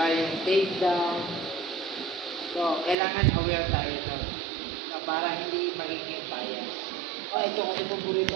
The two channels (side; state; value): left; drops out; at 3.0 s